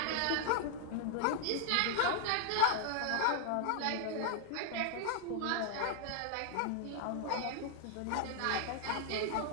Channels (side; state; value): both; different; correlation -0.01